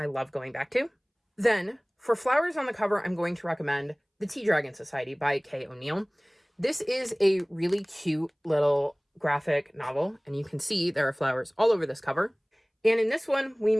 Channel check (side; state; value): both; identical; correlation 1.00